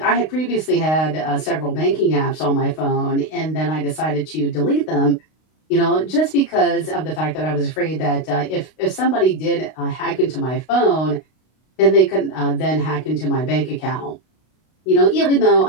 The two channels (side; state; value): right; late; 32 ms